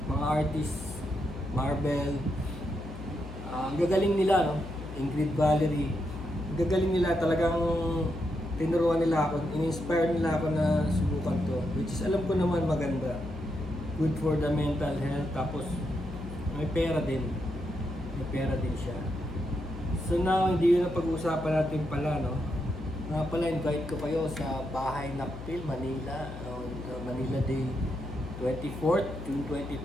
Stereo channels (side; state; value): left; noise; hum, 11 dB below the sound